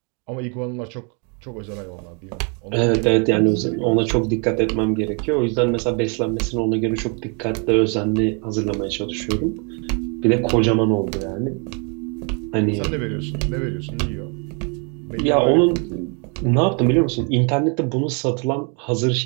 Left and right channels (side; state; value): left; quieter; 36.5 dB